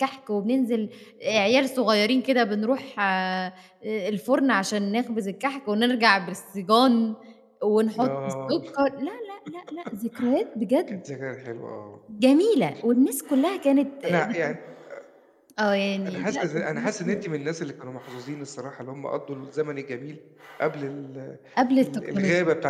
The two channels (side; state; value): both; identical; correlation 1.00